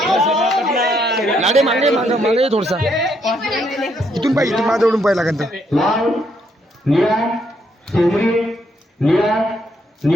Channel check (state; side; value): normal; both; correlation 0.74